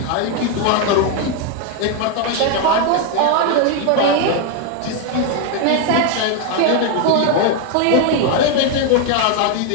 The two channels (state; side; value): different; both; correlation 0.01